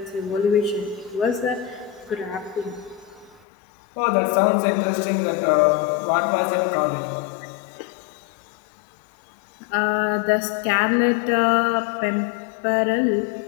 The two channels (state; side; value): drops out; right; at 3.5 s